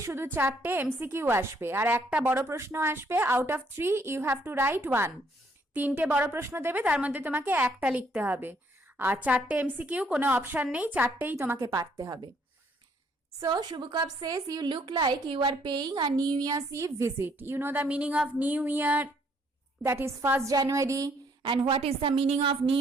শুধু 4টে MCQ আসবে আর একটা বড় প্রশ্ন আসবে। Out of 3 you have to write 1. 3টে বড় প্রশ্ন দেবে, তার মধ্যে তোমাকে একটা লিখতে হবে। আর 4টে MCQ, কোনো অপশন নেই, 4টেই তোমাকে পারতে হবে। So Shubukov says, you look like you are paying a New Year's Eve visit. You know the meaning of New Year, that is 1st January. And what is the meaning of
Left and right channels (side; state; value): both; normal; correlation 0.67